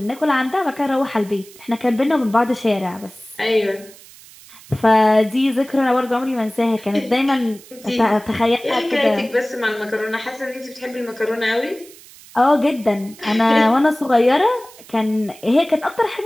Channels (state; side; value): noise; right; hiss, 21 dB below the sound